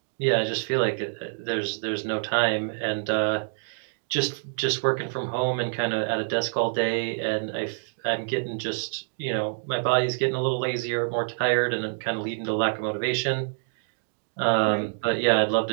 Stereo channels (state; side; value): silent; left; digital silence